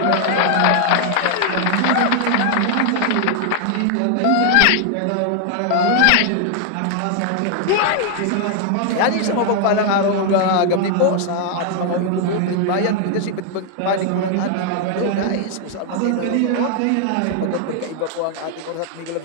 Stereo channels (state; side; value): different; both; correlation 0.00